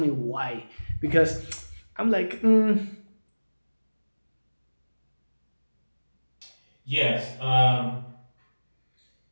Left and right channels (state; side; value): inverted; both; correlation -1.00